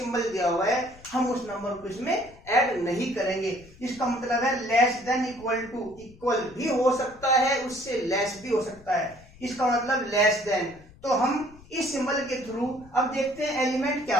दिया हुआ है हम उस नंबर को इसमें ऐड नहीं करेंगे। इसका मतलब है less than equal to, equal भी हो सकता है उससे लेस भी हो सकता है, इसका मतलब लेस देन। तो हम इस सिंबल के थ्रू अब देखते हैं एलिमेंट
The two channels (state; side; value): noise; left; rumble, 23 dB below the sound